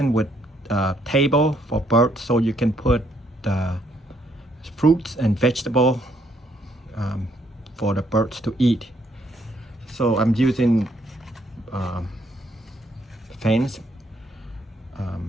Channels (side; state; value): both; normal; correlation 0.70